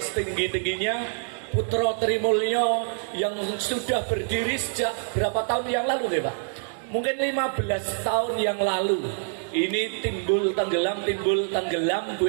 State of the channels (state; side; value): silent; left; 61 dB below the other